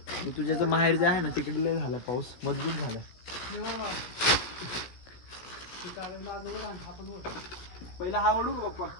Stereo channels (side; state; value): right; late; 16 ms